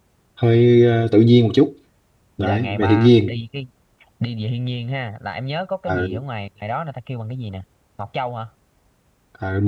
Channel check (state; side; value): identical; both; correlation 1.00